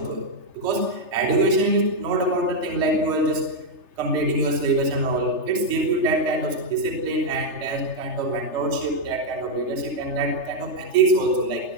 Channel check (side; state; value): left; late; 3.3 ms